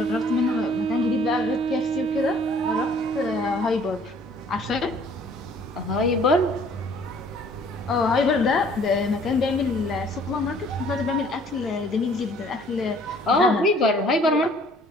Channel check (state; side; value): normal; both; correlation 0.56